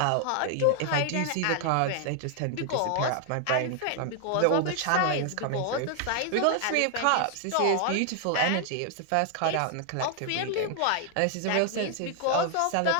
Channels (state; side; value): different; both; correlation 0.00